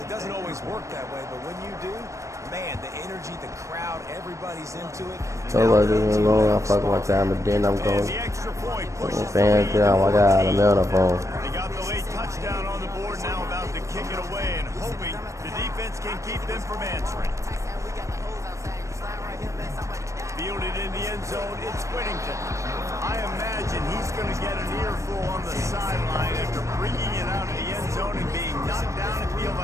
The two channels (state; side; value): late; left; 0.15 ms